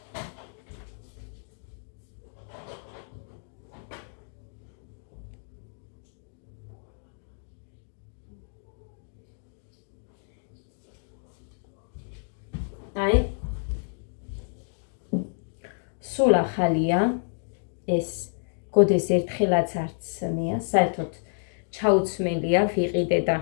აი სულ ახალია ეს გოდეს ერთხელაც არც მეა, საერთოდ ჩაუცმელია, ვიყიდე და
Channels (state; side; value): silent; right; digital silence